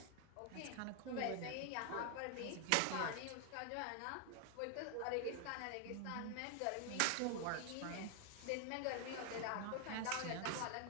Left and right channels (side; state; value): both; different; correlation 0.00